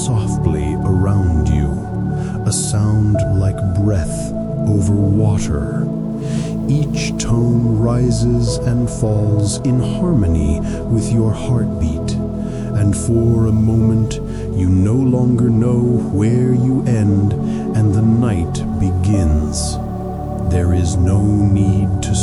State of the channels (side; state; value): both; identical; correlation 1.00